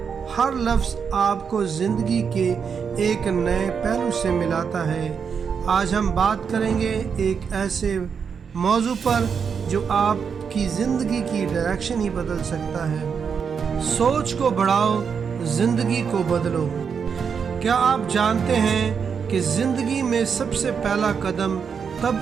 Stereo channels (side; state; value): left; quieter; 6.5 dB